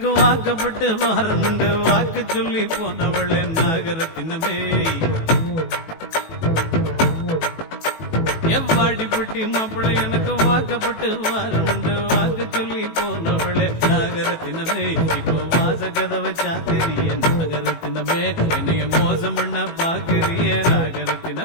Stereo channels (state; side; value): late; right; 18 ms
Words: வாக்கப்பட்டு வாரமுண்டு வாக்கு சொல்லி போனவள் நாகரத்தினமே எவ்வாடிப்பட்டி மாப்பிள்ளை எனக்கு வாக்கப்பட்டு வாரமுண்டு வாக்கு சொல்லி போனவளே நாகரத்தினமே இப்போ வாச கதவை சாத்திரிய நாகரத்தினமே என்னைய மோசம் பண்ண பாக்குறிய